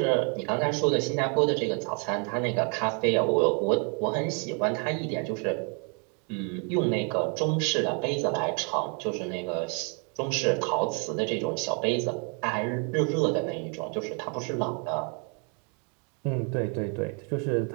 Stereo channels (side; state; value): left; quieter; 37.8 dB